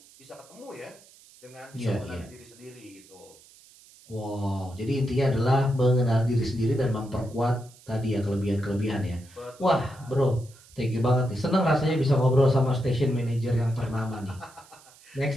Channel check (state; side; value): noise; right; hiss, 25 dB below the sound